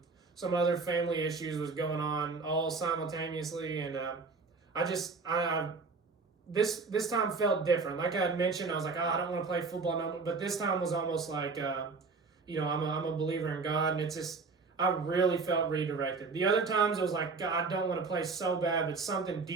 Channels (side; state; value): left; quieter; 4.4 dB